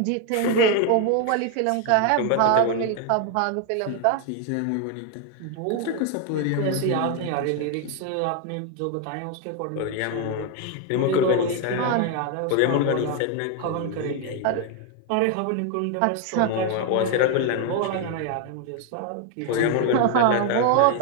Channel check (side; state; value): both; different; correlation 0.01